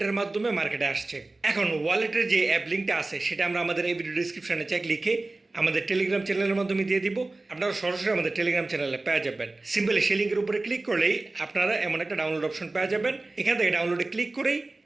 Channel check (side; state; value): left; quieter; 3.1 dB